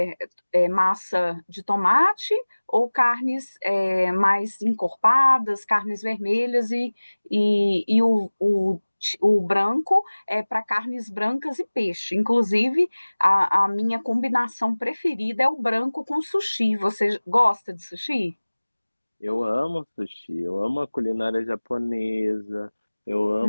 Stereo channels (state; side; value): inverted; both; correlation -1.00